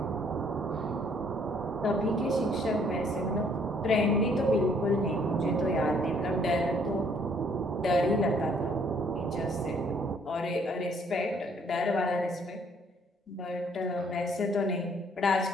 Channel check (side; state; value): both; normal; correlation 0.64